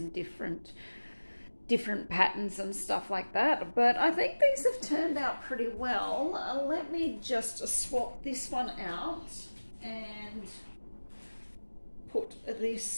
different patterns and stuff like that. But I think these have turned out pretty well. Let me just swap this one out and put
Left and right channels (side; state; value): both; inverted; correlation -1.00